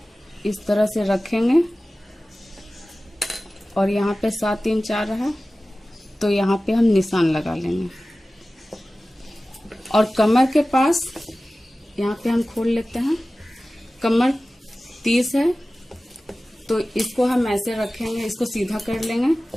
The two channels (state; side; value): normal; both; correlation 0.96